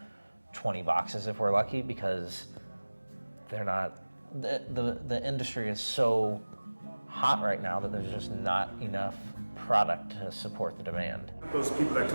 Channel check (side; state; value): both; inverted; correlation -1.00